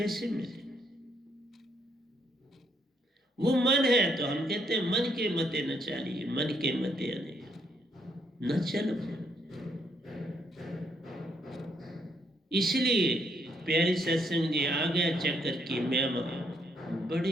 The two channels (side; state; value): both; normal; correlation 0.72